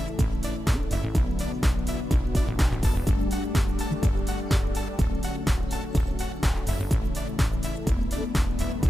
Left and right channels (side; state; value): both; normal; correlation 0.91